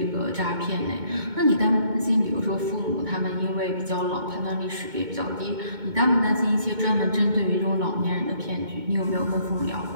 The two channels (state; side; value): late; left; 2.2 ms